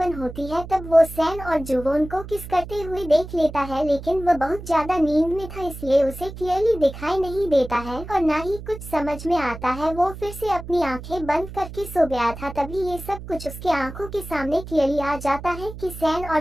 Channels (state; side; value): noise; right; hum, 12 dB below the sound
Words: होती है। तब वो सैन और जुवोन को किस करते हुए देख लेता है, लेकिन वह बहुत ज्यादा नींद में था इसलिए उसे क्लियरली दिखाई नहीं देता है और ना ही कुछ समझ में आता है। वो फिर से अपनी आंखें बंद करके सो गया था। तभी ये सब कुछ उसके आंखों के सामने क्लियरली आ जाता है कि सैन और